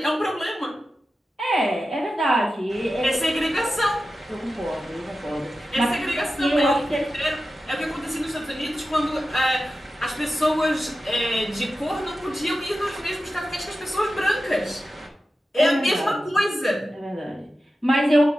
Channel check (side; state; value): both; normal; correlation 0.93